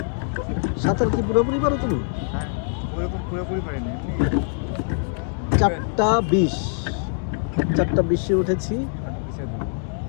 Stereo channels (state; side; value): silent; right; digital silence